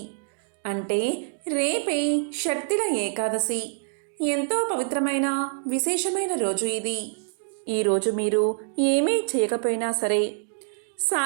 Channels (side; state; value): left; silent; digital silence